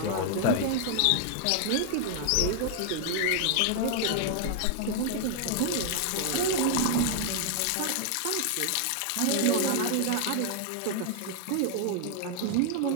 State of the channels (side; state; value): both; different; correlation 0.00